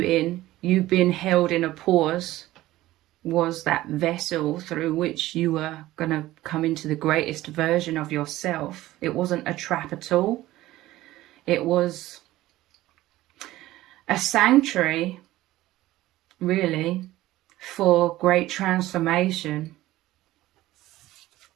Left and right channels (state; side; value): quieter; left; 16.2 dB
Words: in, you being held in a pause, was that vessel through which you were going to come into the greatest version of yourself. It wasn't a trap at all. It was a sanctuary, really, for great transformation